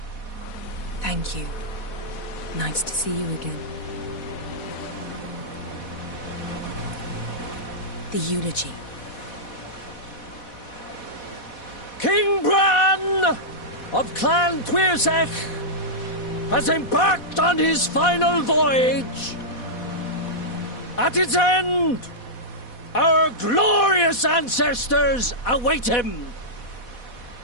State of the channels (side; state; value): right; late; 4.1 ms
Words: Thank you. Nice to see you again. The eulogy. King Bran of Clan Twirsech has embarked on his final voyage. At its end, our glorious ancestors await him.